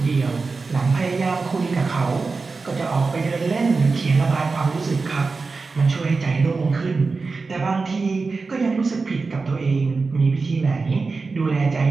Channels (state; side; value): quieter; left; 4.2 dB